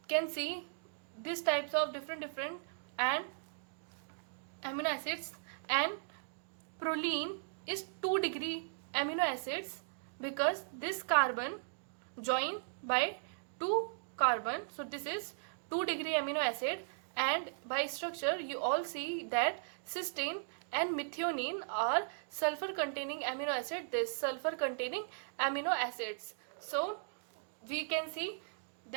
can see these types of different and amino acids. And proline is 2-degree amino acids because this carbon join by 2 carbon, so this is 2-degree amino acid. And by structure you all see that cysteine and methionine are sulfur containing amino acid, this sulfur containing amino acids. So we can see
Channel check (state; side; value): silent; left; digital silence